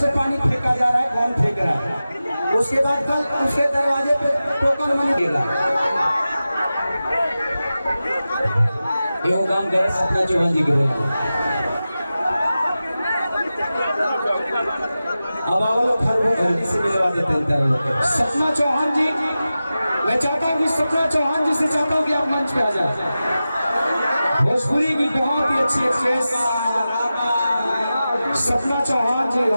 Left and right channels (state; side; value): inverted; both; correlation -0.94